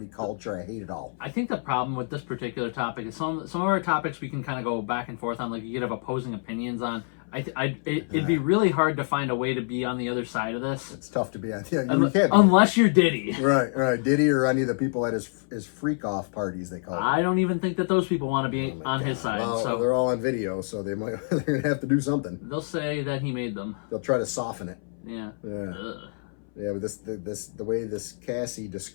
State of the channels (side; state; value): right; silent; 60 dB below the other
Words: culture. I hate it all. I think the problem with this particular topic is some of our topics we can kind of go back and forth on. Like you could have opposing opinions on. It'd be really hard to find a way to be on the other side of this, It's tough to be on. Yeah, you can't. Be. unless you're Diddy. Right. Diddy or any of the people at his freak off parties they call it. I don't even think that those people want to be on his side. Well, So they're all on video, so they're gonna have to do something. they'll say that he made them. They'll try to soften it. Yeah. Yeah. Ugh. Yeah, but the way this Cassie